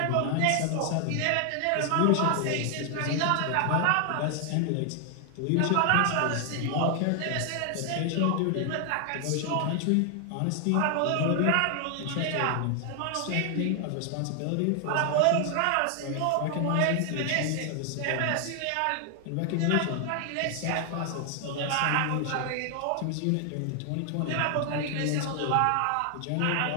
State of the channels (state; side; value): different; both; correlation 0.00